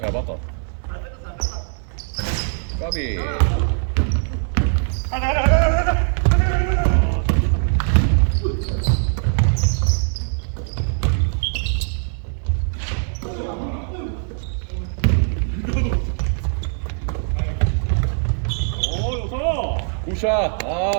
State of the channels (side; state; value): left; silent; 56 dB below the other